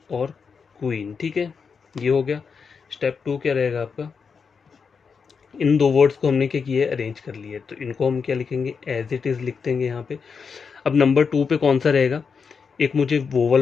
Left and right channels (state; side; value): quieter; right; 5.7 dB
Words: और क्वीन, ठीक है। ये हो गया। स्टेप 2 क्या रहेगा आपका, इन दो वर्ड्स को हमने क्या किया है, अरेंज कर लिए, तो इनको हम क्या लिखेंगे, एज इट इज़ लिख देंगे यहाँ पे। अब नंबर 2 पे कौन सा रहेगा, एक मुझे